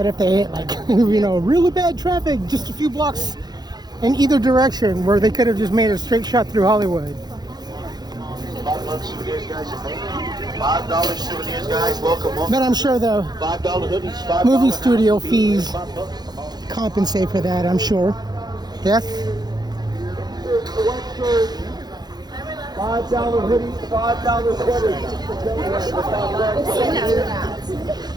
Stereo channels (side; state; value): left; late; 0.20 ms